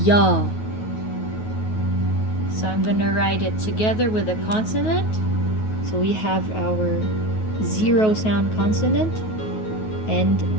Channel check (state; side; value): late; right; 9.3 ms